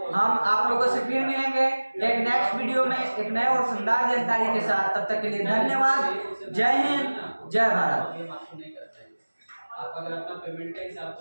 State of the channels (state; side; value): inverted; both; correlation -1.00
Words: हम आप लोगों से फिर मिलेंगे एक नेक्स्ट वीडियो में एक नए और शानदार जानकारी के साथ। तब तक के लिए धन्यवाद। जय हिंद, जय भारत। आप अगर अपना पेमेंट का हिसाब